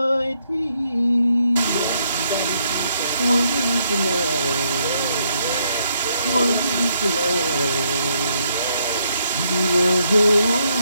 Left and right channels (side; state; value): both; inverted; correlation -0.73